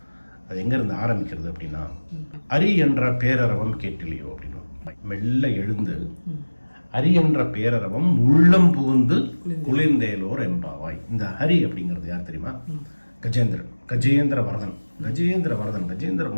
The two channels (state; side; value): inverted; both; correlation -1.00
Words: அது எங்க இருந்து ஆரம்பிக்கிறது அப்படின்னா, அரி என்ற பேரரவம் கேட்டிலையோ அப்படின்னு மெல்ல எழுந்து ஹரி என்ற பேரரவம் உள்ளம் புகுந்து குளிர்ந்தேலோர் எம்பாவாய். இந்த ஹரி அப்படிங்கிறது யார் தெரியுமா? கஜேந்திரன், கஜேந்திர வரதன். கஜேந்திர